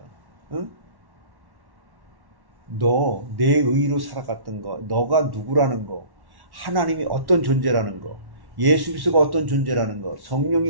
응? 너, 내 의로 살아갔던 거, 너가 누구라는 거, 하나님이 어떤 존재라는 거, 예수 그리스도가 어떤 존재라는 거,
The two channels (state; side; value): late; left; 1.1 ms